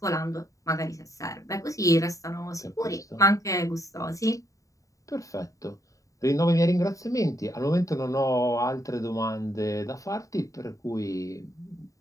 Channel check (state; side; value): late; right; 0.16 ms